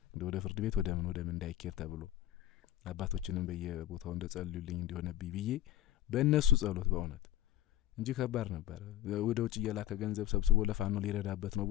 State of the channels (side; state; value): right; quieter; 13.1 dB